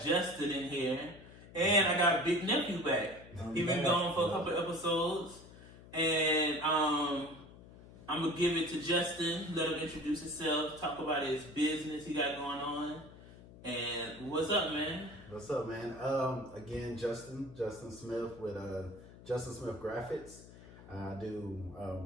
Justin in here, and I got Big Nephew back. He's been gone for a couple episodes, and I'm gonna give it to Justin. Let him introduce himself, talk about his business he got going on, and what's up, man? What's up, man? Again, Justin Smith with Justin Smith Graphics. I do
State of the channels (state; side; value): noise; left; hum, 19 dB below the sound